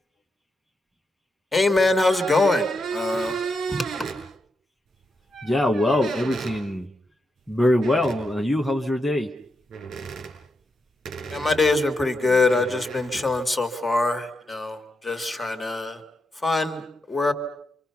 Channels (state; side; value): normal; both; correlation 0.84